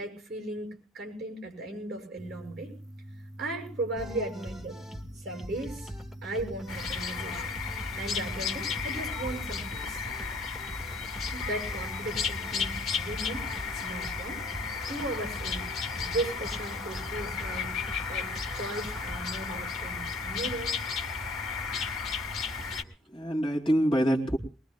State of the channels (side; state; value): both; normal; correlation 0.55